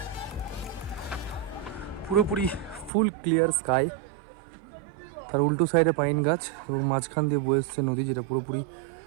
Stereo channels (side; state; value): left; drops out; at 2.9 s